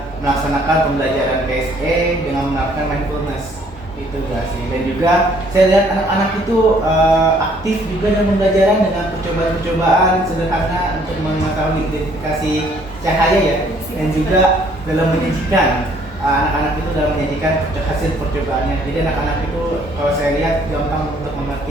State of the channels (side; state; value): both; normal; correlation 0.62